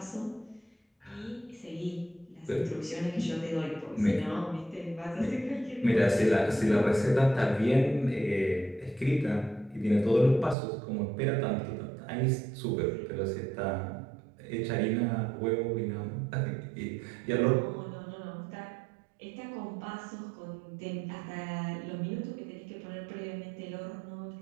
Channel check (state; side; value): drops out; left; at 10.6 s